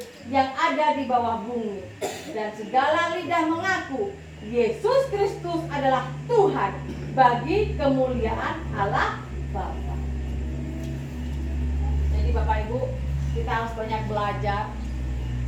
yang ada di bawah bumi, dan segala lidah mengaku Yesus Kristus adalah Tuhan, bagi kemuliaan Allah Bapa. Jadi Bapak Ibu, kita harus banyak belajar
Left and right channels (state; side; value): identical; both; correlation 1.00